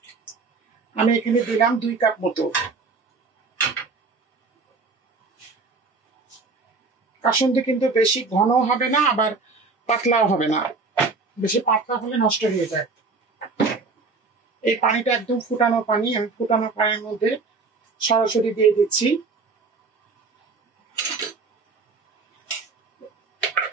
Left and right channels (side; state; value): left; quieter; 4.2 dB